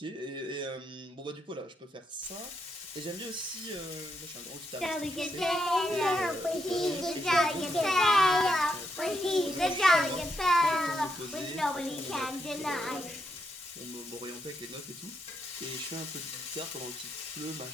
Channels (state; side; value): normal; both; correlation 0.80